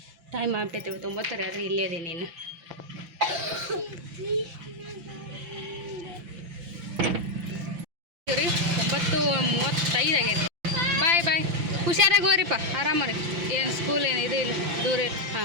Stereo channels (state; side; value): late; left; 5.9 ms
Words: ಟೈಮ್ ಆಗ್ಬಿಟ್ಟೈತೆ 9 ಆದರೆ ಇಲ್ಲೇ ಅದೇ ನೀನು ರೀ 9:35 ಆಗೈತೆ ಬಾಯ್ ಹುಷಾರಾಗಿ ಹೋಗ್ರಿಪ್ಪ ಆರಾಮರಿ. ಏನು ಸ್ಕೂಲ್ ಏನು ಇದು ಇಲ್ಲ, ದೂರ ಇಲ್ಲ.